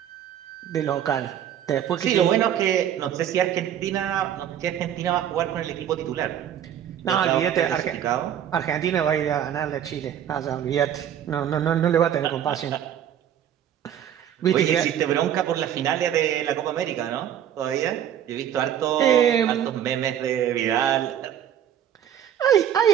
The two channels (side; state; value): left; quieter; 10.0 dB